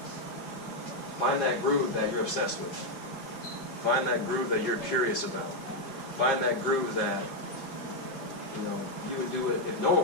Find that groove that you're obsessed with. Find that groove that you're curious about. Find that groove that, you know, you would do it if no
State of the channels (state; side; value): late; right; 5.3 ms